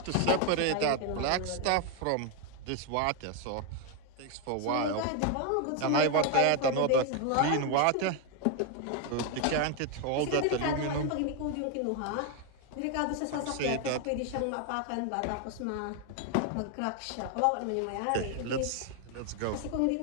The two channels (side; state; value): both; different; correlation 0.01